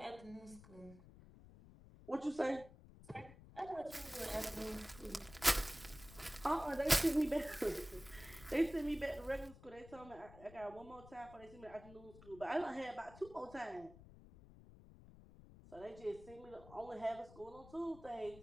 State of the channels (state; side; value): noise; left; rumble, 19 dB below the sound